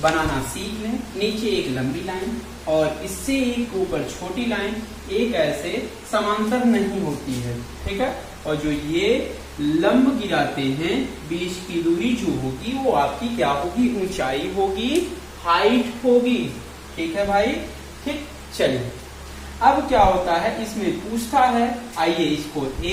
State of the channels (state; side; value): identical; both; correlation 1.00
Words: बनाना सीख लें। नीचे एक लंबी लाइन और इससे एक ऊपर छोटी लाइन, एक ऐसे समांतर नहीं होती है। ठीक है, और जो ये लंब गिराते हैं, बीच की दूरी जो होगी वो आपकी क्या होगी, ऊंचाई होगी, हाइट होगी। ठीक है भाई। ठीक, चलिए अब क्या होता है, इसमें पूछता है, आइए इसको